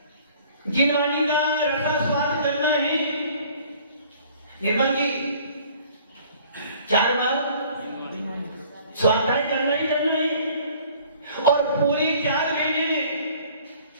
जिनवाणी का रसा स्वाद करना है। निर्मल जी 4 बार स्वाध्याय करना ही करना है और पूरे 4 महीने में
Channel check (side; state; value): both; inverted; correlation -0.53